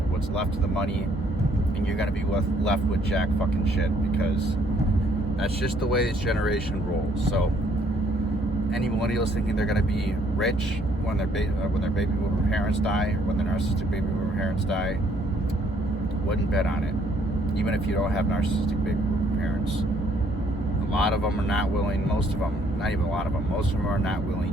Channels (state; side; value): normal; both; correlation 0.65